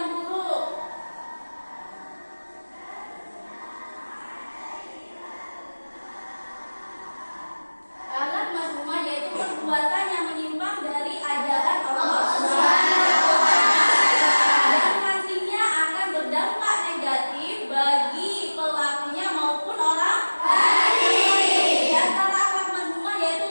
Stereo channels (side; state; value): both; inverted; correlation -1.00